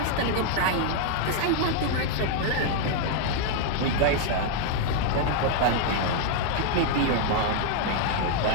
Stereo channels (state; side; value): different; both; correlation 0.00